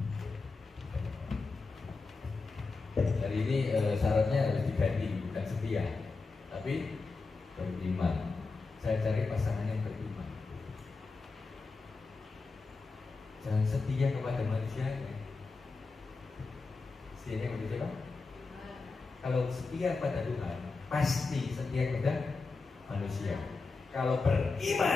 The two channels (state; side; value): quieter; right; 4.1 dB